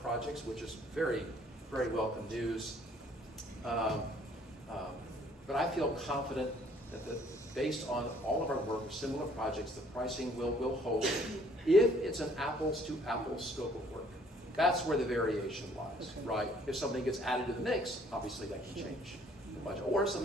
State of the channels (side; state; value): both; normal; correlation 0.61